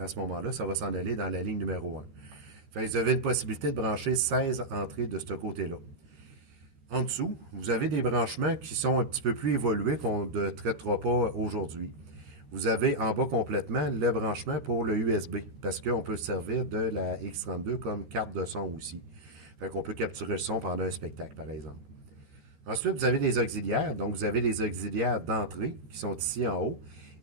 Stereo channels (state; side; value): late; left; 13 ms